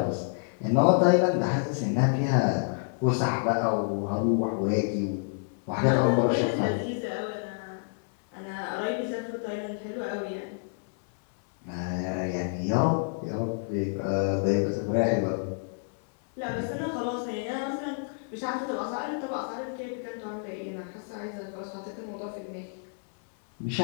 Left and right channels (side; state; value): right; silent; 59 dB below the other